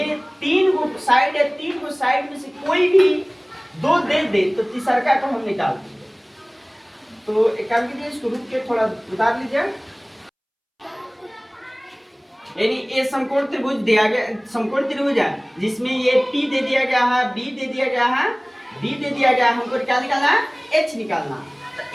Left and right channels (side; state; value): both; identical; correlation 1.00